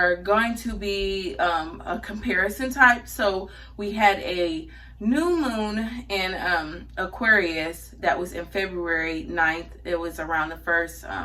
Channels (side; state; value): both; identical; correlation 1.00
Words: going to be a comparison type. So we had a new moon in Aquarius that was in February 9th. It was around